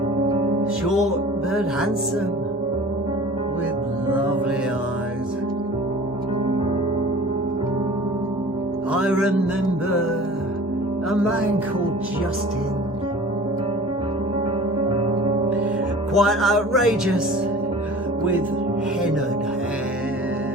short but handsome, with lovely eyes. I remember a man called Justin, quite outrageous, with hennaed hair.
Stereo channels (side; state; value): both; normal; correlation 0.42